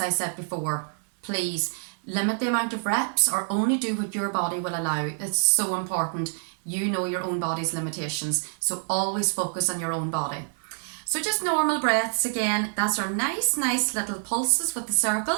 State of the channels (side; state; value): left; silent; 60 dB below the other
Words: I said before, please limit the amount of reps or only do what your body will allow. It's so important. You know your own body's limitations, so always focus on your own body. So just normal breaths again. That's our nice little pulses with the